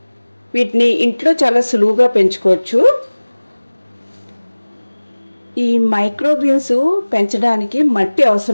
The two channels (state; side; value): inverted; both; correlation -1.00